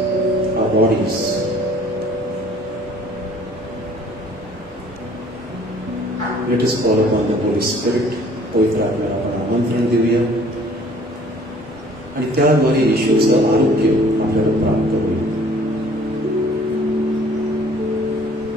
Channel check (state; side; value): normal; both; correlation 0.55